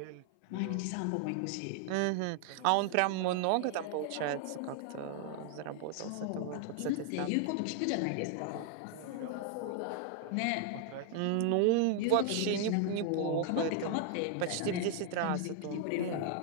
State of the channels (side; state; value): both; different; correlation 0.00